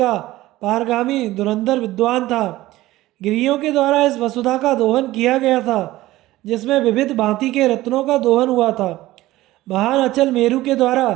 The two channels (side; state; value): left; quieter; 16.8 dB